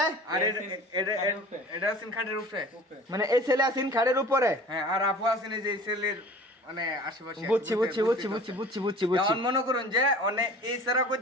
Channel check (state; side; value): normal; both; correlation 0.43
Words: আর এটা আছেন খাটের উপরে। মানে এই ছেলে আছেন খাড়ের উপরে। হ্যাঁ, আর আপু আছেন এই যে এই ছেলের মানে আশেপাশে। বুঝছি বুঝছি বুঝছি বুঝছি বুঝছি বুঝছি বুঝছি। এখন মনে করুন যে অনেক এই সারা